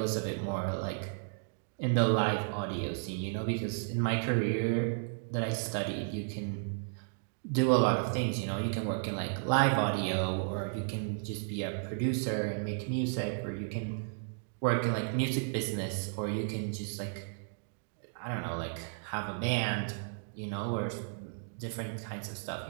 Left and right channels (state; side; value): silent; left; digital silence